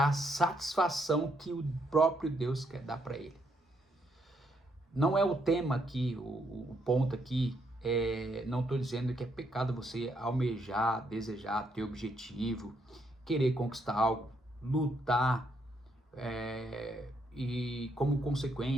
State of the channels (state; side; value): normal; both; correlation 0.75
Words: a satisfação que o próprio Deus quer dar para ele. Não é o tema aqui, o ponto aqui não estou dizendo que é pecado você almejar, desejar, ter objetivo, querer conquistar algo, lutar, e como